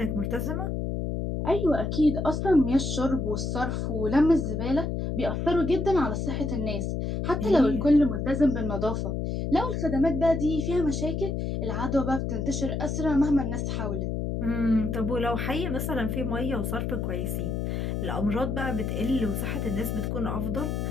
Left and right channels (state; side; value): noise; left; hum, 2 dB below the sound